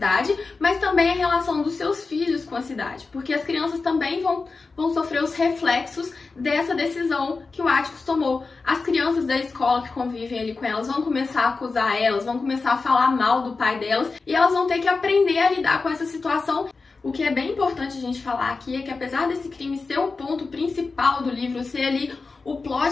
mas também a relação dos seus filhos com a cidade, porque as crianças também vão sofrer os reflexos dessa decisão que o Atticus tomou. As crianças da escola que convivem ali com elas vão começar a acusar elas, vão começar a falar mal do pai delas, e elas vão ter que aprender a lidar com essa situação. O que é bem importante a gente falar aqui é que, apesar desse crime ser o ponto principal do livro, ser ali o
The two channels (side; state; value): right; quieter; 4.1 dB